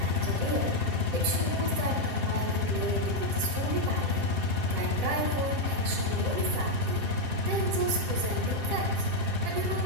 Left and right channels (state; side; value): late; left; 7.5 ms